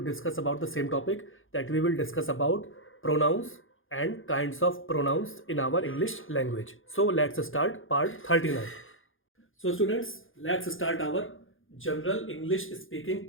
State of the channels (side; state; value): right; late; 0.59 ms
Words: discuss about the same topic, that we will discuss about pronouns and kinds of pronouns in our English language. So let's start part 39. So students, let's start our General English Speaking